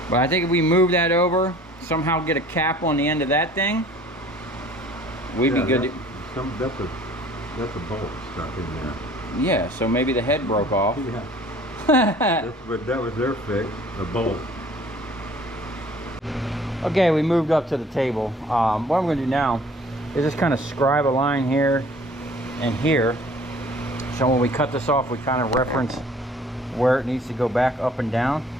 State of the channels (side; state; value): both; normal; correlation 0.51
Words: But I think if we move that over, somehow get a cap on the end of that thing, we'd be good. That's a bolt stuck in there. Yeah, so maybe the head broke off. Yeah. That was their fix, the bolt. Okay, we moved up to the table. What I'm going to do now is just kind of scribe a line here and here. So when we cut this off, we kind of reference where it needs to go back up and down.